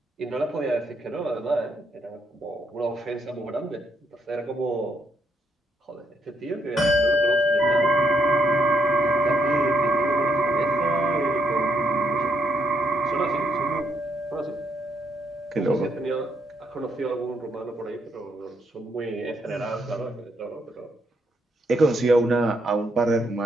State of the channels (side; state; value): both; normal; correlation 0.76